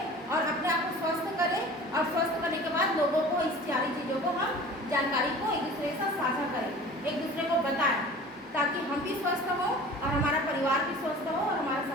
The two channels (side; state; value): both; normal; correlation 0.42